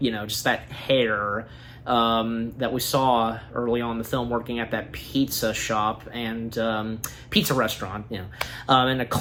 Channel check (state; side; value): identical; both; correlation 1.00